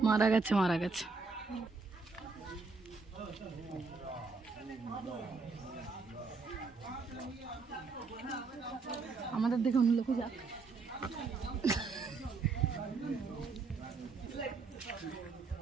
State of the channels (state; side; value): quieter; left; 4.3 dB